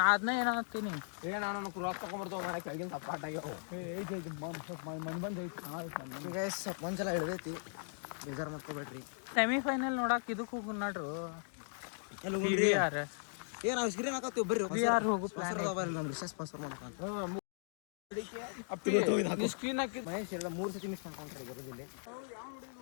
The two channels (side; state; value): right; silent; digital silence